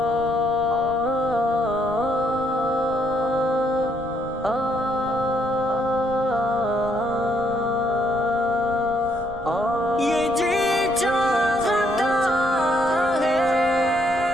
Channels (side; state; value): right; noise; rumble, 15 dB below the sound